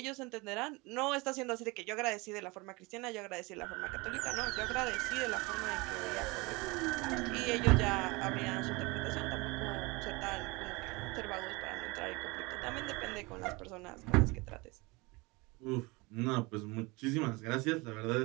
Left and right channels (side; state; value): left; quieter; 25.1 dB